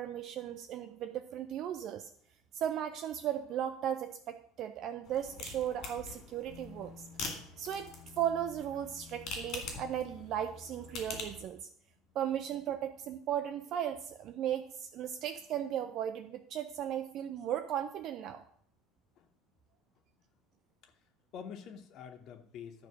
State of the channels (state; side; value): quieter; left; 8.1 dB